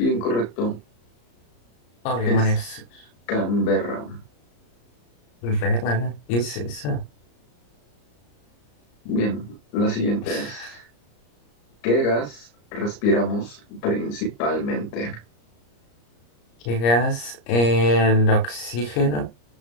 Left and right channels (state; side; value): late; right; 34 ms